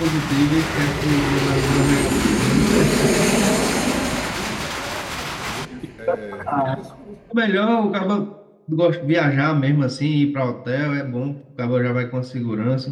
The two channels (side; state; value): both; identical; correlation 1.00